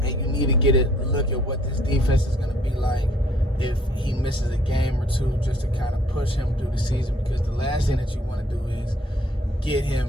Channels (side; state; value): both; normal; correlation 0.62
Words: you need to get a look at what this defense is going to be like if he misses a game or two, just to kind of push him through the season, because the last thing that you want to do is get him